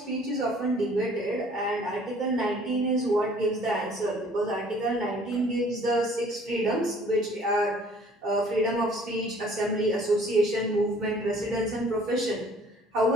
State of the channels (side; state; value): both; normal; correlation 0.55